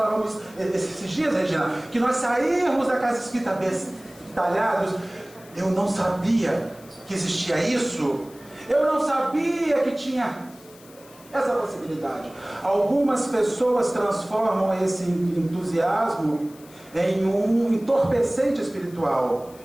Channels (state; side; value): noise; left; hiss, 24 dB below the sound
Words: esses dias, Regina, que nós sairmos da casa espírita bestalhados. Eu não sabia que existia isso. Eu não sabia que tinha essa possibilidade. Algumas pessoas transformam esse entusiasmo em um entorpecente espiritual.